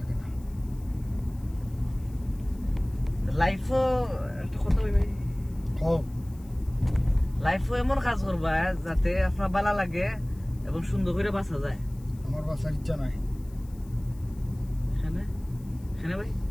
না লাইফও একটা কথা ভাই খাও লাইফও এমন কাজ করবা যাতে আপনার ভালো লাগে এবং সুন্দর করে বাঁচা যায় আমার বাসার ইচ্ছা নাই এখানে এখানে ভাই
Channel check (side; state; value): left; noise; hiss, 27 dB below the sound